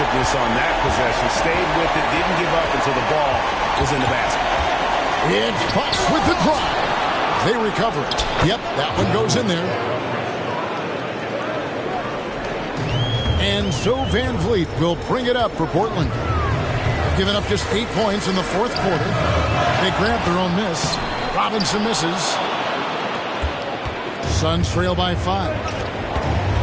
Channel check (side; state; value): both; identical; correlation 1.00